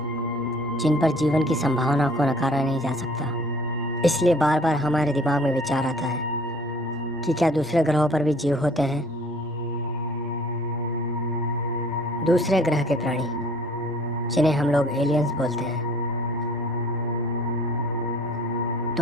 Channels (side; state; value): both; normal; correlation 0.53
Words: जिन पर जीवन की संभावना को नकारा नहीं जा सकता। इसलिए बार बार हमारे दिमाग में विचार आता है कि क्या दूसरे ग्रहों पर भी जीव होते हैं। दूसरे ग्रह के प्राणी, जिन्हें हम लोग एलियंस बोलते हैं।